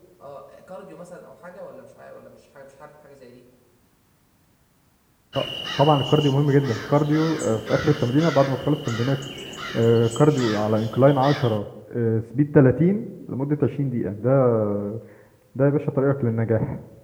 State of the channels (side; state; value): both; identical; correlation 1.00